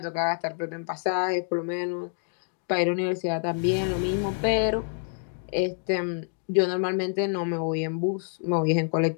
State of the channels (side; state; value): right; silent; digital silence